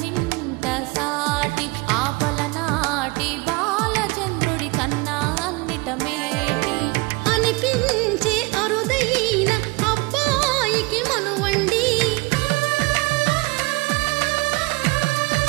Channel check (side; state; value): left; quieter; 26.0 dB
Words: సాటి ఆపలనాటి బాలచంద్రుడి కన్నా అన్నిట మేటి. అనిపించే అరుదైన అబ్బాయికి మనువండి